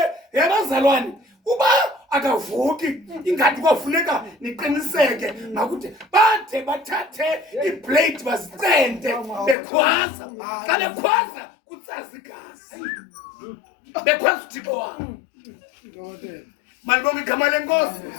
yabazalwane uba akavuki ingathi kofuneka niqiniseke makude bathe bathathe iblade bazicente bekhwaza. Xa bekhwaza kutsaza igazi bekhwaza uThixo wabo. Malibonke igama lenkosi.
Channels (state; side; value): drops out; right; at 9.6 s